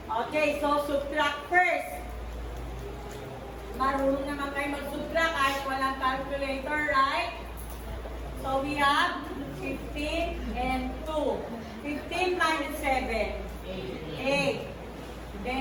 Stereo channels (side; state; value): both; identical; correlation 1.00